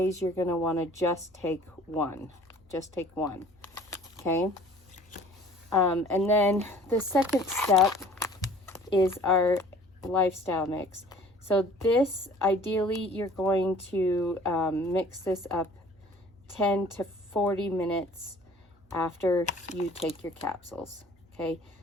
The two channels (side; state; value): both; normal; correlation 0.50